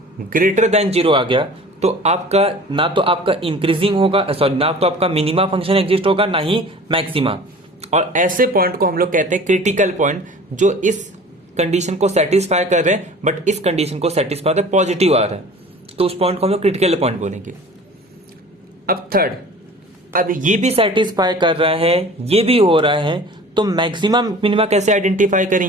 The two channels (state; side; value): normal; both; correlation 0.43